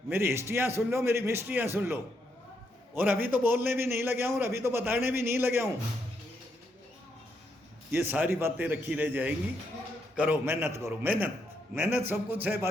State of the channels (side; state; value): both; normal; correlation 0.78